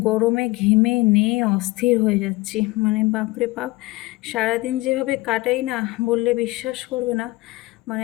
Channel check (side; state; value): right; quieter; 20.8 dB